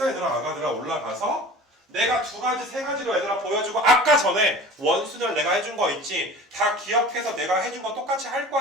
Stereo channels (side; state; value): both; normal; correlation 0.40